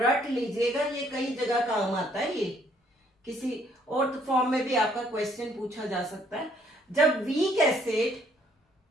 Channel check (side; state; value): both; normal; correlation 0.65